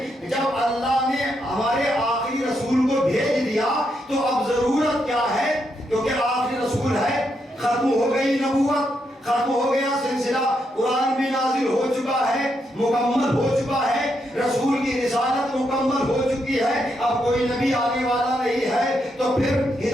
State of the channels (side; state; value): both; normal; correlation 0.80